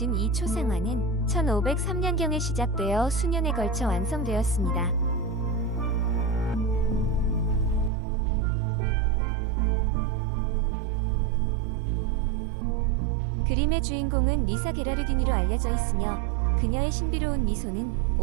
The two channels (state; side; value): drops out; left; at 7.9 s